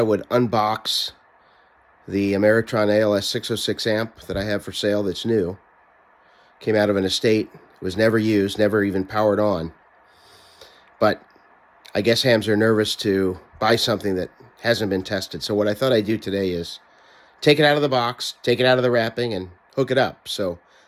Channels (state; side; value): identical; both; correlation 1.00